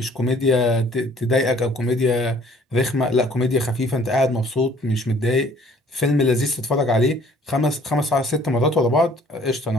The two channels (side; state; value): both; normal; correlation 0.56